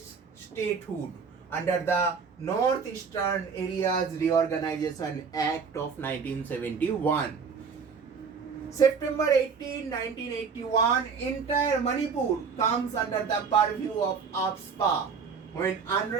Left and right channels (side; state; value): left; quieter; 5.7 dB